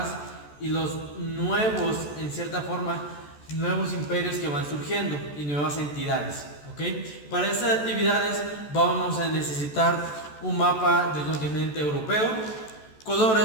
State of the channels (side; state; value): right; late; 14 ms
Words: y los nuevos, en cierta forma, nuevos imperios que van surgiendo y nuevas entidades. ¿Ok? Para estas actividades vamos a necesitar un mapa del continente europeo,